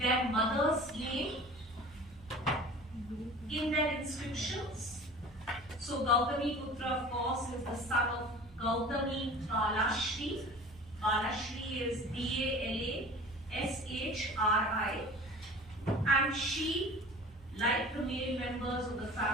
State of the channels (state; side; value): normal; both; correlation 0.41